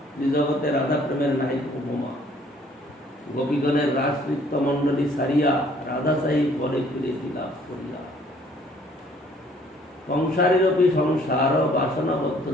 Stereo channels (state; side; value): normal; both; correlation 0.60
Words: জগতে রাধা প্রেমের নাই উপমা। গোপীগণের রাজনৃত্য মণ্ডলী সারিয়া রাধা সাহি পরে ফিরে লাভ করিয়া। সংসারীরপি সংসার বাসনাবদ্ধ